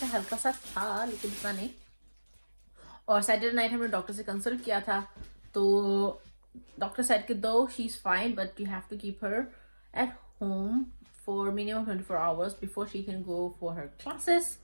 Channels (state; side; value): inverted; both; correlation -1.00